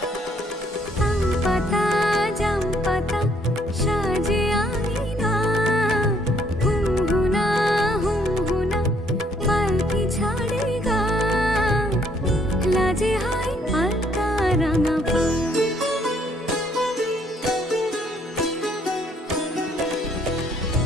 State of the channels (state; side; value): normal; both; correlation 0.66